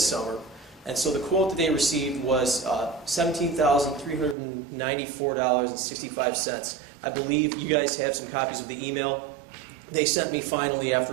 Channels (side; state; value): left; drops out; at 4.4 s